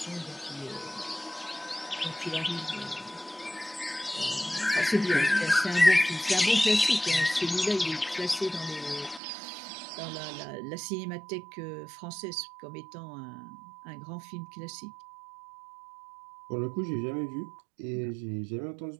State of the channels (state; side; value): drops out; left; at 9.2 s